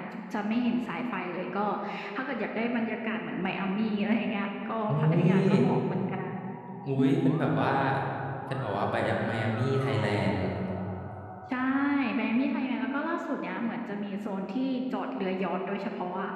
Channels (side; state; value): both; identical; correlation 1.00